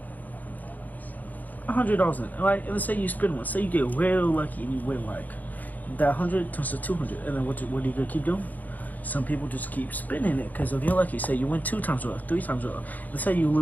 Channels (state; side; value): late; right; 0.081 ms